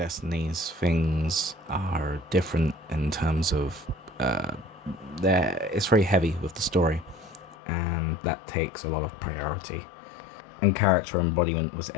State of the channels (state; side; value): drops out; right; at 7.6 s